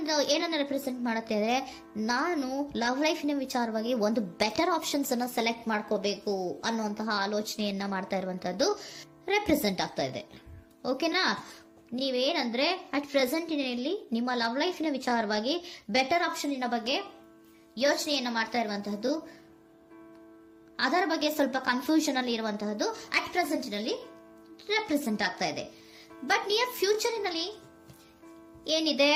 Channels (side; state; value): both; identical; correlation 1.00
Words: ಏನನ್ನ ರೆಪ್ರೆಸೆಂಟ್ ಮಾಡುತ್ತೆ ಅಂದ್ರೆ, ನಾನು ಲವ್ ಲೈಫಿನ ವಿಚಾರವಾಗಿ ಒಂದು ಬೆಟರ್ ಆಪ್ಷನ್ಸ್ ಅನ್ನ ಸೆಲೆಕ್ಟ್ ಮಾಡ್ಕೋಬೇಕು ಅನ್ನುವಂತಹ ಆಲೋಚನೆಯನ್ನ ಮಾಡ್ತಾ ಇರುವಂತಹದ್ದು ರೆಪ್ರೆಸೆಂಟ್ ಆಗ್ತಾ ಇದೆ. ಓಕೆನಾ? ನೀವೇನಂದ್ರೆ ಅಟ್ ಪ್ರೆಸೆಂಟಿನಲ್ಲಿ ನಿಮ್ಮ ಲವ್ ಲೈಫಿನ ವಿಚಾರವಾಗಿ ಬೆಟರ್ ಆಪ್ಷನ್ ಬಗ್ಗೆ ಯೋಚನೆಯನ್ನ ಮಾಡ್ತಾ ಇರುವಂತಹದ್ದು, ಅದರ ಬಗ್ಗೆ ಸ್ವಲ್ಪ ಕನ್ಫ್ಯೂಷನ್ ಅಲ್ಲಿ ಇರುವಂತಹದ್ದು ಅಟ್ ಪ್ರೆಸೆಂಟಿನಲ್ಲಿ ರೆಪ್ರೆಸೆಂಟ್ ಆಗ್ತಾ ಇದೆ. ಬಟ್ ನಿಯರ್ ಫ್ಯೂಚರಿನಲ್ಲಿ ಏನಿದೆ?